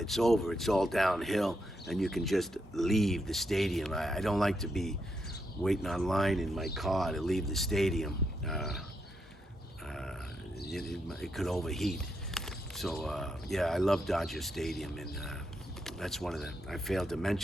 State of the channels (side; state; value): both; normal; correlation 0.81